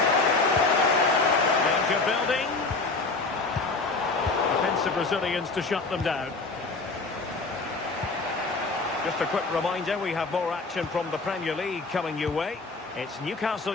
Danger building. Defensive Brazilians to shut them down. Just a quick reminder, we have more action from the Premier League coming your way. It's Newcastle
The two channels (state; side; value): quieter; right; 3.7 dB